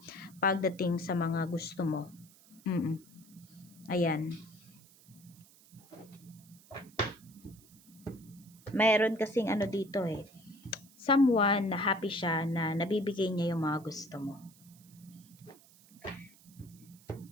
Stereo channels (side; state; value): right; noise; hiss, 25 dB below the sound